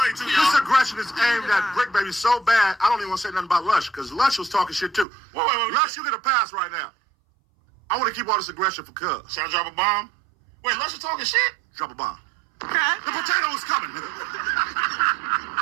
too, y'all. This aggression is aimed at Briccbaby so bad, I don't even want to say nothing about Lush, because Lush was talking shit, too. Wait. Lush, you get a pass right now. I want to keep all this aggression for Cuz. Should I drop a bomb? Wait, Lush is talking shit? Drop a bomb. Okay. The potato is coming, nigga.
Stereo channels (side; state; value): left; drops out; at 5.1 s